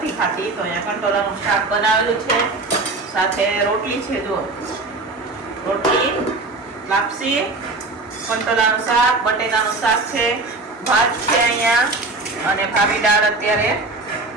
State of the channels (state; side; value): quieter; left; 3.3 dB